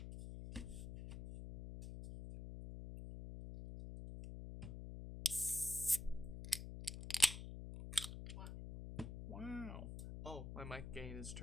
Wow. Oh, my mic gain is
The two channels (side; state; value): left; noise; hum, 8 dB below the sound